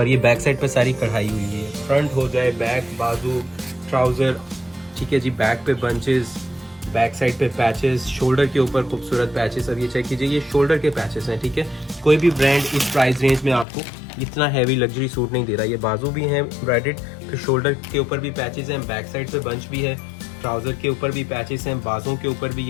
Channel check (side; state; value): right; drops out; at 13.7 s